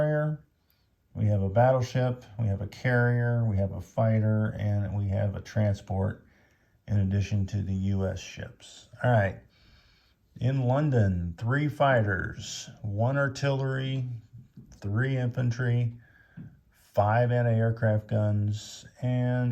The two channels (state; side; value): identical; both; correlation 1.00